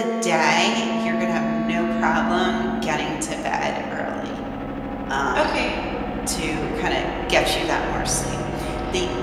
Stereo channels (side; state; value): both; identical; correlation 1.00